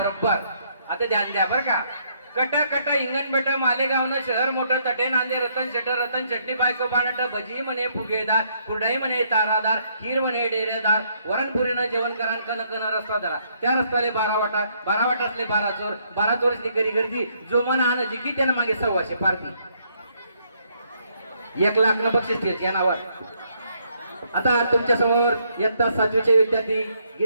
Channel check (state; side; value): inverted; both; correlation -0.71